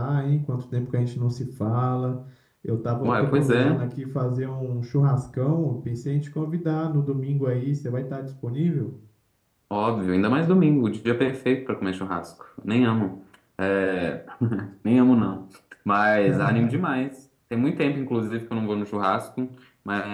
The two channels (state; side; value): identical; both; correlation 1.00